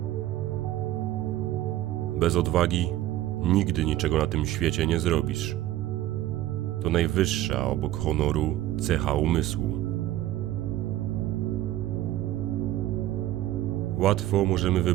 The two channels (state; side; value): quieter; left; 14.2 dB